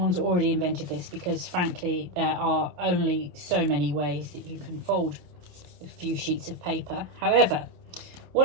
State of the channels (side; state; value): left; late; 28 ms